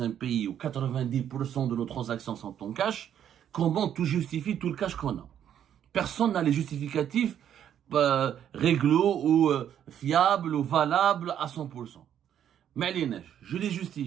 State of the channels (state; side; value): quieter; left; 9.8 dB